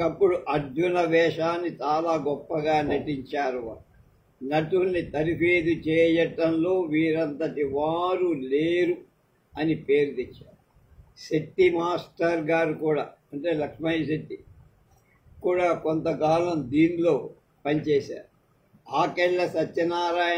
అర్జున వేషాన్ని చాలా గొప్పగా నటించారు. నటుల్ని తరిఫేదు చేయటంలో వీరంతటి వారు లేరు అని పేరు తెచ్చారు. శెట్టి మాస్టర్ గారు కూడా, అంటే లక్ష్మయ్య శెట్టి కూడా కొంతకాలం దీనిలో పనిచేశారు. ఆకెళ్ళ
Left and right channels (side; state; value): both; identical; correlation 1.00